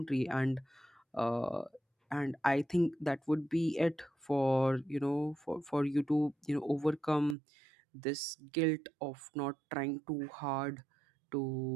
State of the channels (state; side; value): drops out; left; at 7.4 s